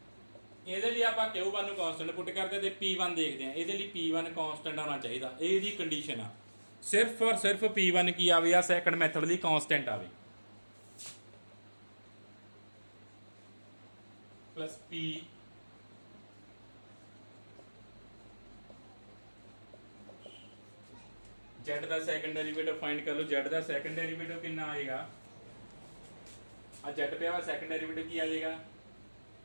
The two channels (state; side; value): inverted; both; correlation -1.00